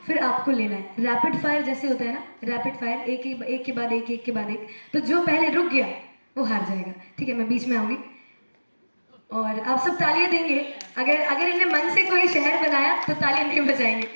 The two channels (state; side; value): inverted; both; correlation -1.00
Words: फिर आपको लेना है। रैपिड फायर जैसे होता है ना, रैपिड फायर, एक के बाद एक के बाद एक। तो जो पहले रुक गया वो हार जाएगा, ठीक है। मैं बीच में आऊँगी और आप सब तालियां देंगे। अगर इन्हें मन से कोई शहर बनाया तो तालियां नहीं बजाएंगे,